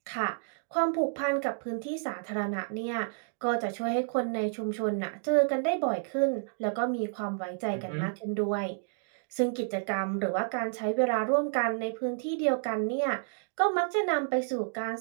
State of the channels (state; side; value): silent; left; digital silence